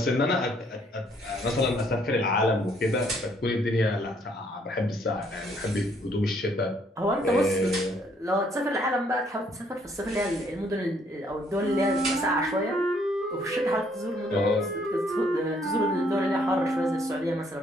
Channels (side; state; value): both; normal; correlation 0.66